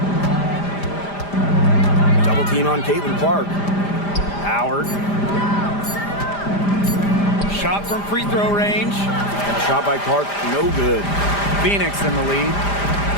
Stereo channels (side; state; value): right; late; 5.0 ms